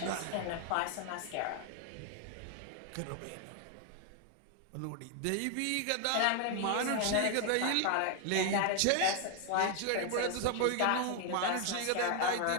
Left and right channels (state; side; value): different; both; correlation 0.00